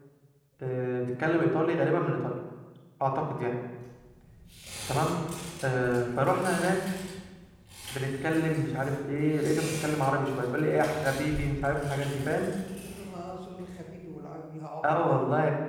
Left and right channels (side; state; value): both; identical; correlation 1.00